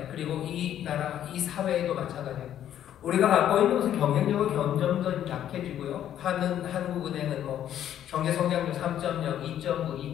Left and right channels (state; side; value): quieter; right; 10.8 dB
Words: 그리고 이 나라, 이 사회에도 마찬가지예요. 우리가 갖고 있는 것은 경쟁력이 점점 더 약해지고요. 한국은행은 경제성장률 3.0,